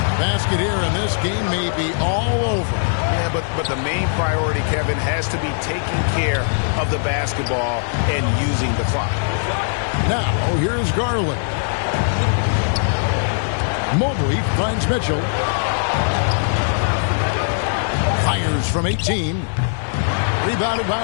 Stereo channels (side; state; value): right; silent; digital silence